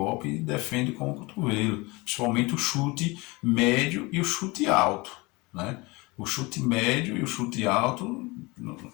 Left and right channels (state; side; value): quieter; right; 24.5 dB